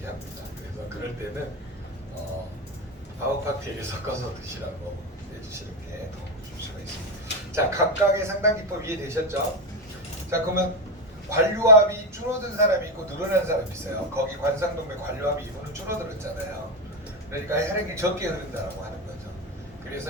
합니다. 그래서 그럴 때는 아웃칵테일을 섞어서 드시라고 해주시는 게 도움을 줄 수가 있습니다. 자, 각각의 상담 기법 이해되셨죠? 자, 그러면 관류압이 줄어든 사람이 있고 늘어난 사람이 있어요. 거기 관상동맥 관류압이 이분은 줄어들었잖아요. 그러니까 혈액이 적게 흐른다고 하는 거죠.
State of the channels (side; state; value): both; normal; correlation 0.12